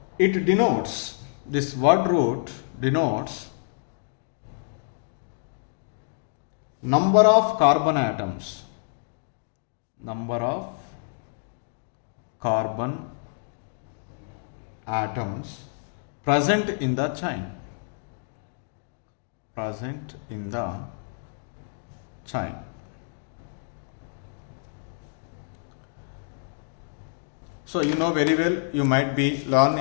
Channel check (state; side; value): silent; right; digital silence